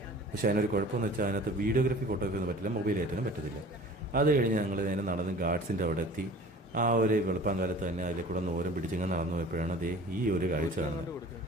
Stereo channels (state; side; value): normal; both; correlation 0.44